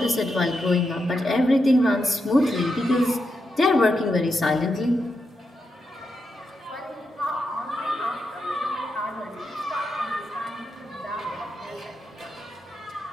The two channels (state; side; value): normal; both; correlation 0.85